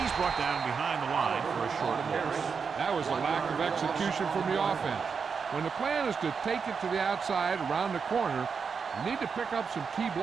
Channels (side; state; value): left; quieter; 5.8 dB